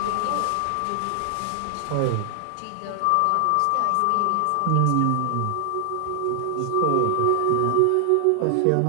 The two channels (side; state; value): both; different; correlation 0.00